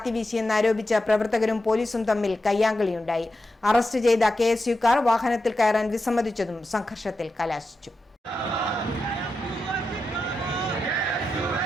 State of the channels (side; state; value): both; normal; correlation 0.89